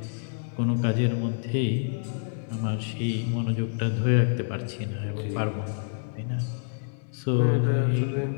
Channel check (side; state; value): right; silent; digital silence